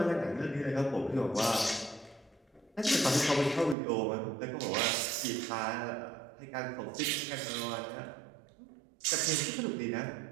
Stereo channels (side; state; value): left; drops out; at 3.8 s